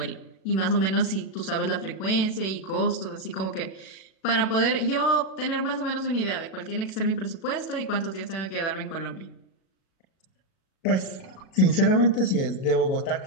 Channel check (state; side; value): late; right; 37 ms